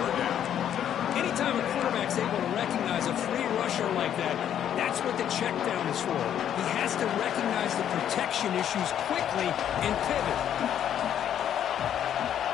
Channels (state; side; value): quieter; right; 9.9 dB